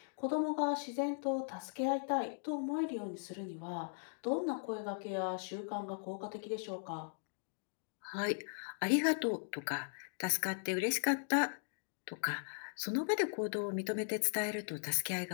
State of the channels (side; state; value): right; silent; digital silence